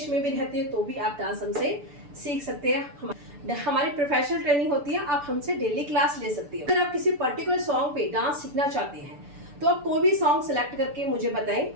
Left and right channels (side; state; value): left; late; 6.9 ms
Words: में भी रहते हैं, तो भी आप डांस हमसे सीख सकते हैं। हमारी प्रोफेशनल ट्रेनिंग होती है, आप हमसे डेली क्लास ले सकती है। अगर आप किसी पर्टिकुलर सॉन्ग पे डांस सीखना चाहते हैं, तो आप कोई भी सॉन्ग सेलेक्ट करके मुझे